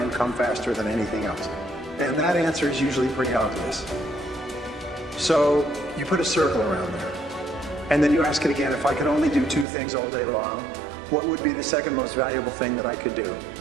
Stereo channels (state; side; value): drops out; left; at 9.7 s